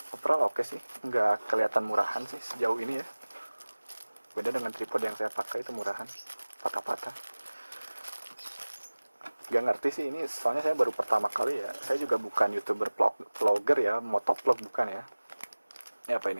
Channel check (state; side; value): inverted; both; correlation -1.00